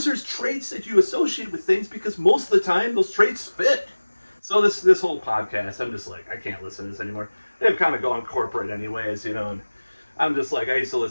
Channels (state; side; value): inverted; both; correlation -1.00